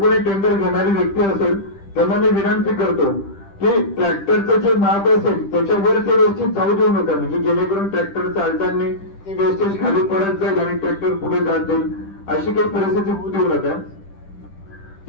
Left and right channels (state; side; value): late; right; 10 ms